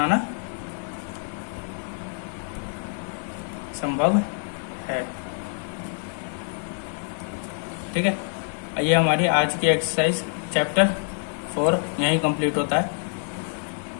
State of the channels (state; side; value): silent; right; 55 dB below the other